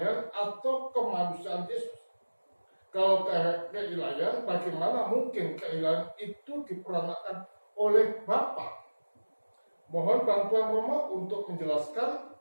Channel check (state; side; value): inverted; both; correlation -1.00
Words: atau kemanusiaan Yesus? Kalau keilahian, bagaimana mungkin keilahian itu diperanakan oleh Bapa? Mohon bantuan Romo untuk menjelaskan,